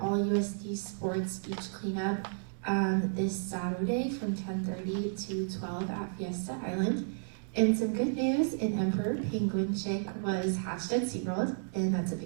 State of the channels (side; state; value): left; silent; digital silence